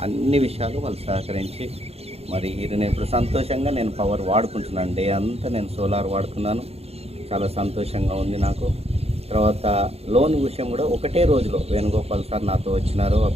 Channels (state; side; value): late; left; 0.29 ms